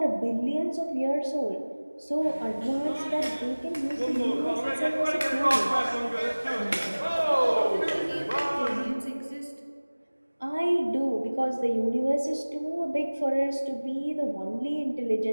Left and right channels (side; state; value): both; inverted; correlation -1.00